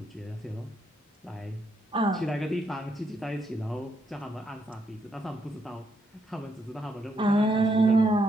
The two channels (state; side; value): normal; both; correlation 0.77